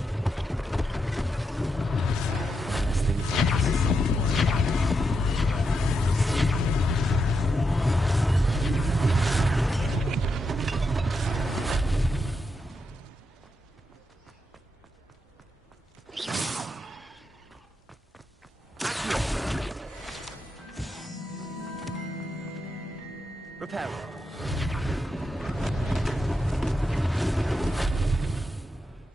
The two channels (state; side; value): normal; both; correlation 0.84